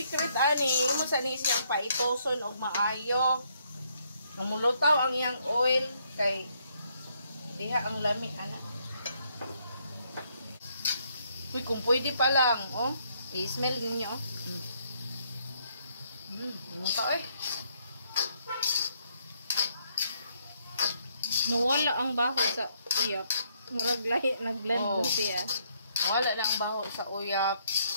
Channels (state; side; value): inverted; both; correlation -0.71